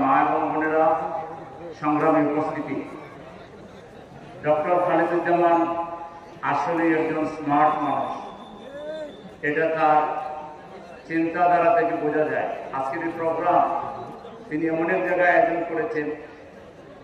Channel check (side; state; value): both; identical; correlation 1.00